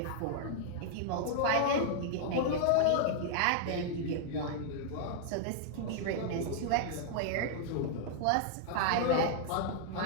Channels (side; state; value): both; different; correlation -0.01